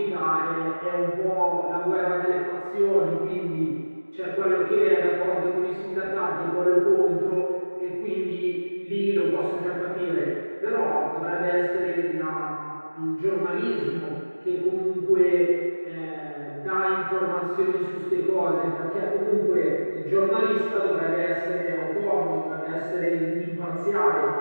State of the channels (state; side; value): inverted; both; correlation -1.00